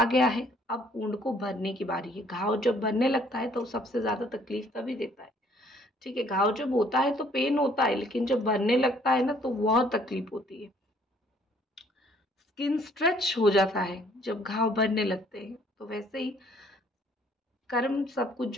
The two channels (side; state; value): both; normal; correlation 0.61